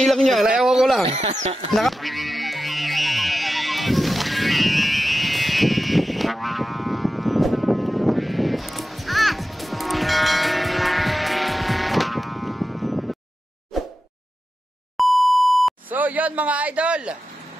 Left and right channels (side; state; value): both; normal; correlation 0.92